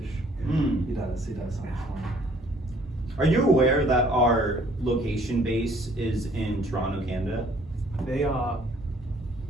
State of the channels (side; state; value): both; normal; correlation 0.59